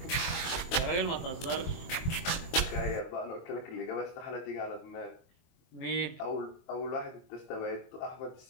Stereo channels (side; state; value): right; late; 22 ms